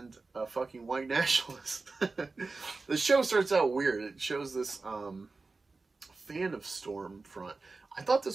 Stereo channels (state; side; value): quieter; left; 3.8 dB